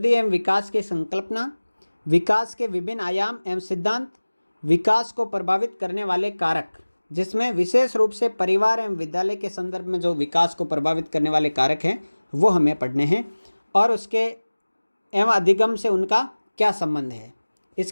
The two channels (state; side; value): inverted; both; correlation -1.00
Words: एवं विकास की संकल्पना, विकास के विभिन्न आयाम एवं सिद्धांत, विकास को प्रभावित करने वाले कारक, जिसमें विशेष रूप से परिवार एवं विद्यालय के संदर्भ में जो विकास को प्रभावित करने वाले कारक हैं वो हमें पढ़ने हैं, और उसके एवं अधिगम से उनका क्या संबंध है।